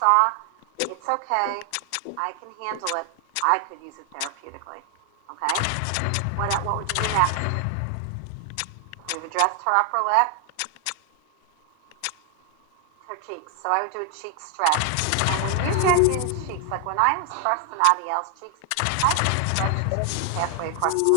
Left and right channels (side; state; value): both; different; correlation 0.00